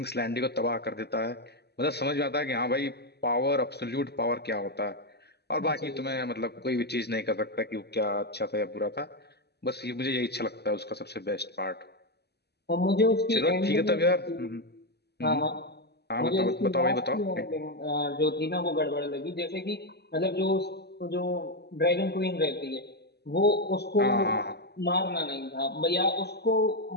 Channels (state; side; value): late; right; 0.48 ms